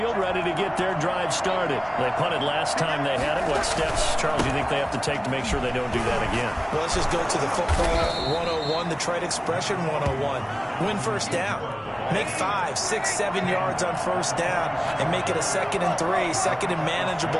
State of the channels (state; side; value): identical; both; correlation 1.00